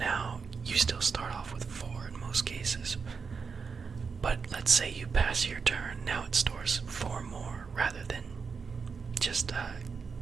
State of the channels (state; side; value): quieter; left; 5.4 dB